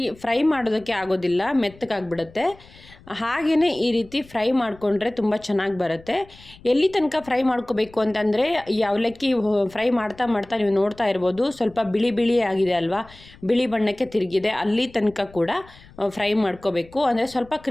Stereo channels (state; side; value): noise; left; rumble, 24 dB below the sound